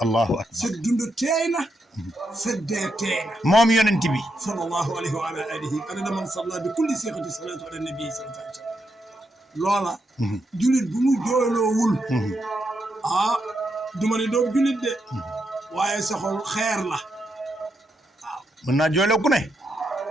allahu akbar sa dund teey na sa dee teey na moom yonent bi sallallahu alayhi wa ala alihi adada man salla bi kulli siixati salaatu ala nabi sallallahu alayhi wa sallam loola julit bu mu jooyloowul duma ne doob julit de waaye sa xol xeer la waaw mën naa jooyloo ku ne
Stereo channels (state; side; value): normal; both; correlation 0.82